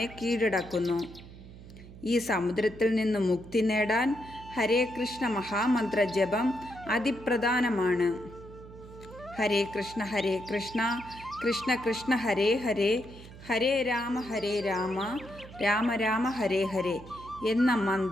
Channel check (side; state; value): right; noise; hum, 17 dB below the sound